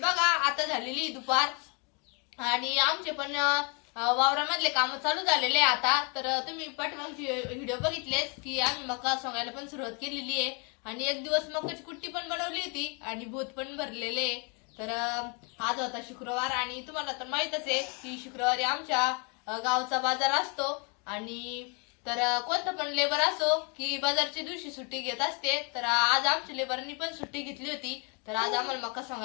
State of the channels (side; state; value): right; quieter; 34.2 dB